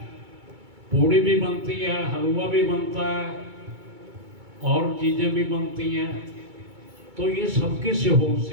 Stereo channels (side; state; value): left; late; 2.2 ms